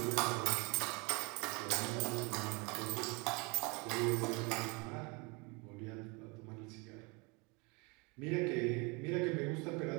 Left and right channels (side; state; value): left; quieter; 29.0 dB